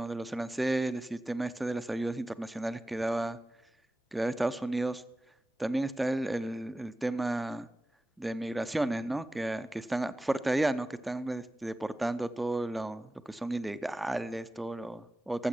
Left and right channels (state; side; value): normal; both; correlation 0.96